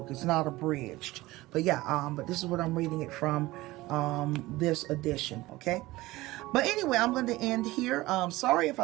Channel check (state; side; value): quieter; left; 18.9 dB